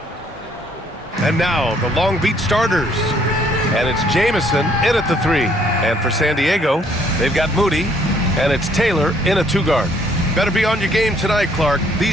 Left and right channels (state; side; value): normal; both; correlation 0.65